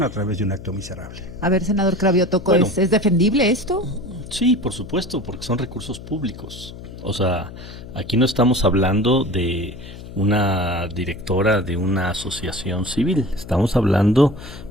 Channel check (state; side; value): noise; left; hum, 14 dB below the sound